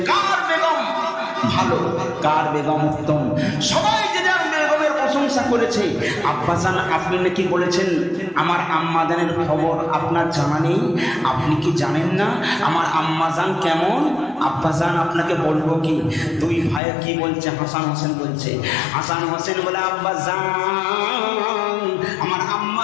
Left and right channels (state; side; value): drops out; right; at 16.8 s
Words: কার বেগম ভালো, কার বেগম উত্তম, সবাই যে যার বেগমের প্রশংসা করেছে। আব্বাজান আপনি নাকি বলেছেন আমার আম্মাজানের খবর আপনার জানা নেই, আপনি কি জানেন না আমার আম্মাজান কেমন? আব্বাজান আপনাকে বলবো কি? দুই ভাই কি বলছে? হাসান হোসেন বলছে। হাসান হোসেন বলে আব্বাজান আমার